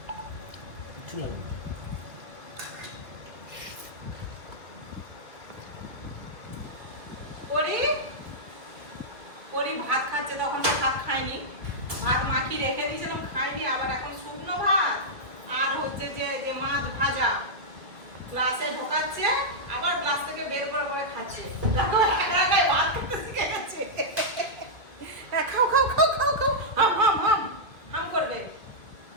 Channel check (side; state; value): left; late; 2.2 ms